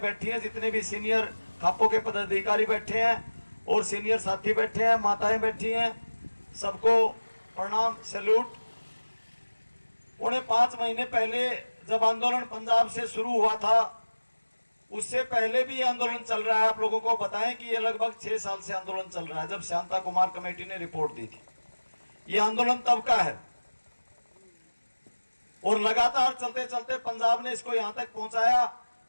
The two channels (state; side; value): inverted; both; correlation -1.00